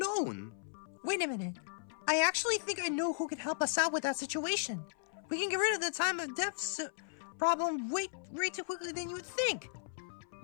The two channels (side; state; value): right; silent; 54 dB below the other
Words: Wait a minute. I actually think I know who can help us out with that situation. We can get rid of the time of death problem way too quickly than you would think.